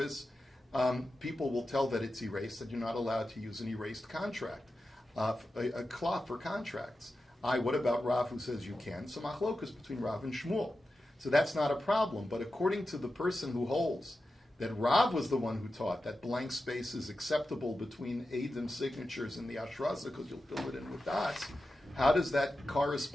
people will tell that it's erased, that you're not allowed to use an erased contract, a cloth for contracts. What about Rav who says you can? So machlokas between Rav and Shmuel. So that's not a problem. But according to the person who holds that Rav was the one who taught that blank space is acceptable between Eidim signatures and the Ashrasa because you'll fill it in with dots, how does that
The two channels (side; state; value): both; normal; correlation 0.91